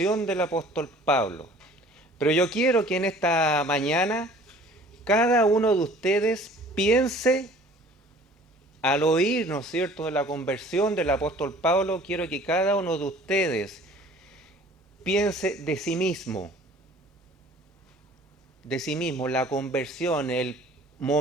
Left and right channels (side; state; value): both; normal; correlation 0.50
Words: del apóstol Pablo. Pero yo quiero que en esta mañana cada uno de ustedes piense, al oír, ¿no es cierto?, de la conversión del apóstol Pablo, quiero que cada uno de ustedes piense de sí mismo, la conversión, el